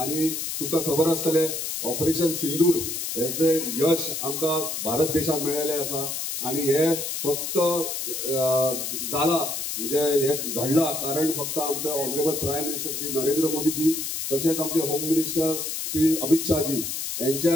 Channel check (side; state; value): left; noise; hiss, 4 dB below the sound